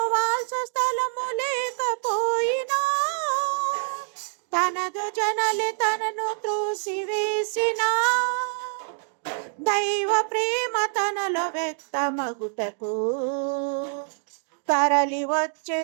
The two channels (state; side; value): silent; left; 61 dB below the other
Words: వాల్చ స్థలము లేకపోయినా తనదు జనలే తనను త్రోసివేసిన దైవ ప్రేమ తనలో వ్యక్తమగుటకు తరలి వచ్చే